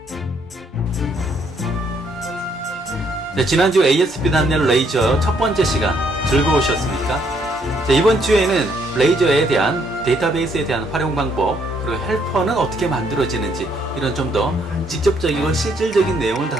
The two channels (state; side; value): normal; both; correlation 0.70